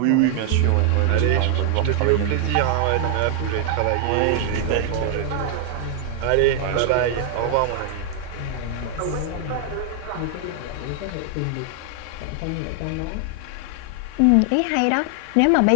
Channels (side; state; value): both; different; correlation 0.00